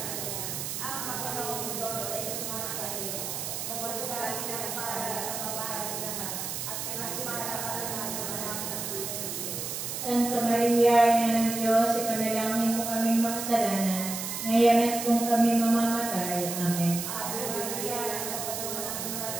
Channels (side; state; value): right; noise; hiss, 4 dB below the sound